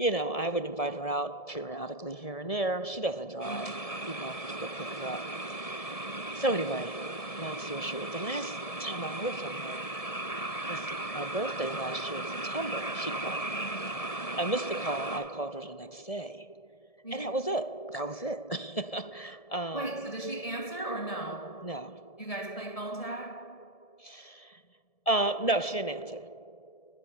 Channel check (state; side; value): late; right; 1.7 ms